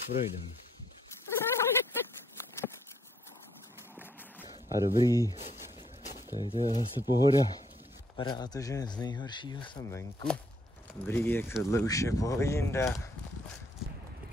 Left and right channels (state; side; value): normal; both; correlation 0.69